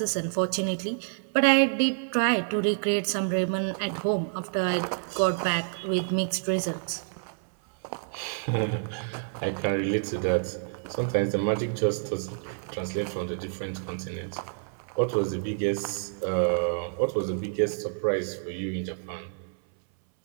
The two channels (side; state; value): left; silent; 59 dB below the other